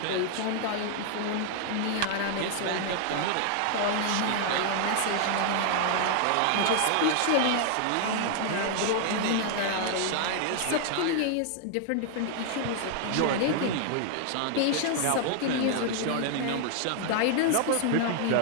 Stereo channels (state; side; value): different; both; correlation 0.00